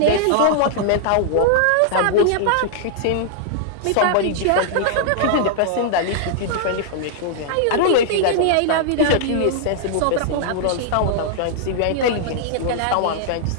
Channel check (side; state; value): both; different; correlation -0.01